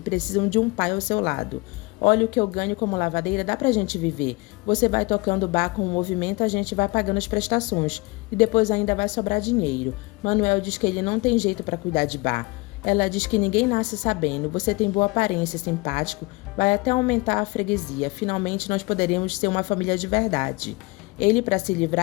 de um pai ao seu lado. Olha o que eu ganho como lavadeira, dá pra gente viver. Você vai tocando o bar com o movimento, a gente vai pagando as prestações. E depois ainda vai sobrar dinheiro. Manuel diz que ele não tem jeito pra cuidar de bar. Ela diz que ninguém nasce sabendo, você tem boa aparência, simpático, vai até aumentar a freguesia. Finalmente nós poderemos ser uma família de verdade. Ele, para se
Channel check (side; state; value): right; quieter; 25.3 dB